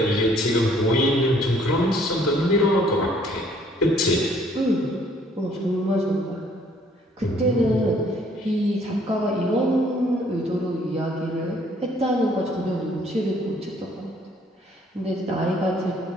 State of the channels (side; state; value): both; normal; correlation 0.61